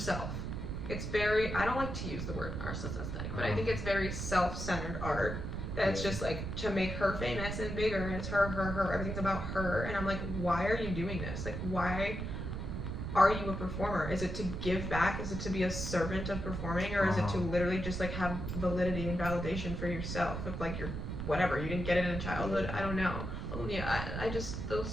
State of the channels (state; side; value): noise; right; rumble, 4 dB below the sound